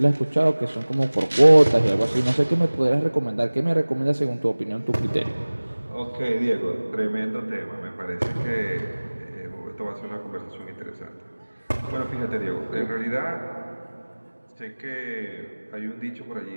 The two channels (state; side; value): inverted; both; correlation -1.00